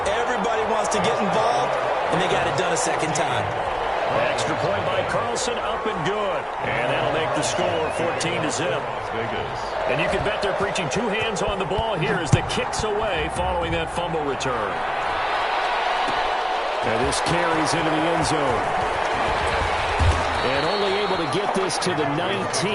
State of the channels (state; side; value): identical; both; correlation 1.00